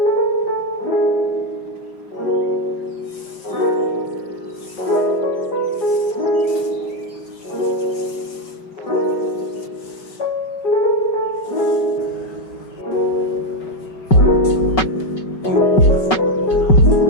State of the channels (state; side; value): late; right; 5.3 ms